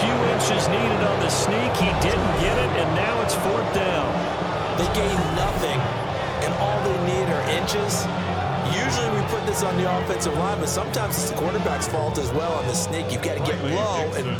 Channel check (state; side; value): identical; both; correlation 1.00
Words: inches needed on the sneak. He didn't get it, and now it's fourth down. They gain nothing, and all they need are inches. Usually we put this on the offensive line, but sometimes it's the quarterback's fault as well on the sneak. You've got to get low and